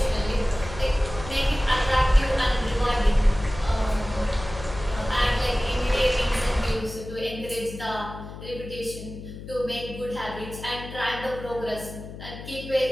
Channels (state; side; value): noise; left; hum, 12 dB below the sound